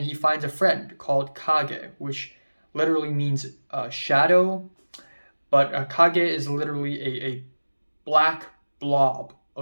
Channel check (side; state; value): both; inverted; correlation -1.00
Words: he finds a friend called Kage, which literally means shadow, but Kage is literally a black blob